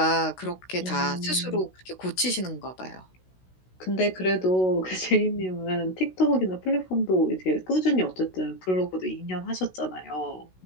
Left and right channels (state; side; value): late; right; 16 ms